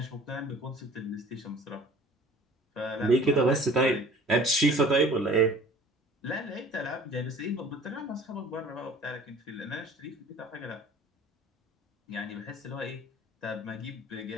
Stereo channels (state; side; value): normal; both; correlation 0.48